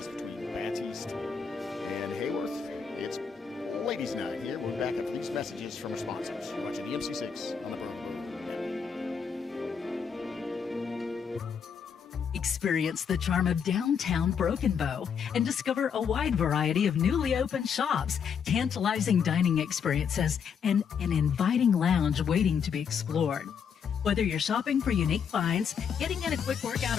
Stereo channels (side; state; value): right; quieter; 6.9 dB